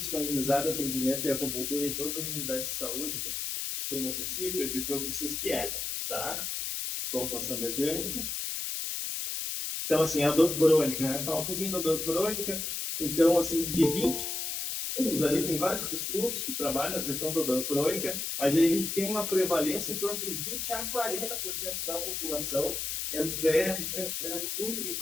atendimento e acupuntura em todas as unidades de saúde do município? Eu digo para vocês que é, tá? Vamos passando adiante. Então, assim, a dor crônica, né? Falar um pouquinho da dor crônica. Então, assim, de 20 estudos, ali tem vários estudos que trabalham a questão da dor crônica, mas a gente tem uma prevalência em torno de 20 a 40% da população. É muito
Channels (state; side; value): noise; left; hiss, 3 dB below the sound